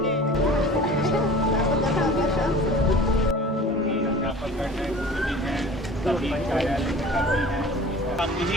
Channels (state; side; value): normal; both; correlation 0.42